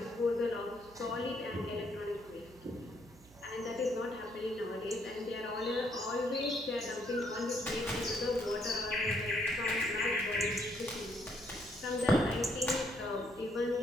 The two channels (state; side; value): noise; right; hum, 23 dB below the sound